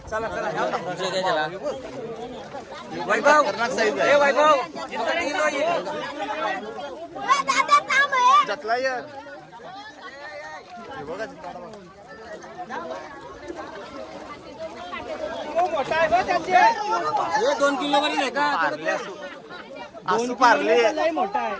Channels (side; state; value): both; identical; correlation 1.00